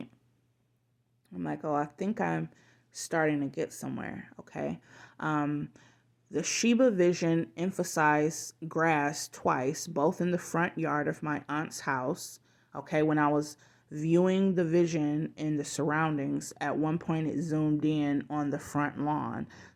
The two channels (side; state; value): both; identical; correlation 1.00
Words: I'm like, oh, I think I'm starting to get somewhere. Okay? The Shiba Vision emphasized grass twice, both in the front yard of my aunt's house. Okay, when I was viewing the vision in the surroundings, at one point it zoomed in on the front lawn.